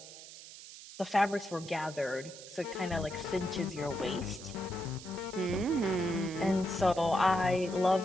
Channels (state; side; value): noise; right; hiss, 15 dB below the sound